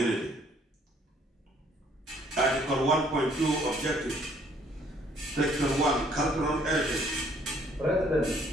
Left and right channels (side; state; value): both; normal; correlation 0.62